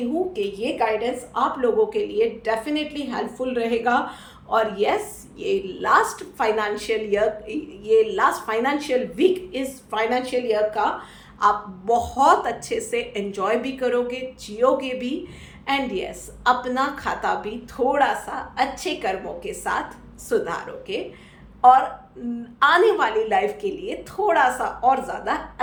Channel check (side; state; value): both; identical; correlation 1.00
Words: हूँ कि ये गाइडेंस आप लोगों के लिए डेफिनेटली हेल्पफुल रहेगा। और यस, ये लास्ट फाइनेंशियल वीक, इस फाइनेंशियल ईयर का आप बहुत अच्छे से एंजॉय भी करोगे, जियोगे भी, एंड यस, अपना खाता भी थोड़ा सा अच्छे कर्मों के साथ सुधारोगे, और आने वाली लाइफ के लिए थोड़ा सा और ज़्यादा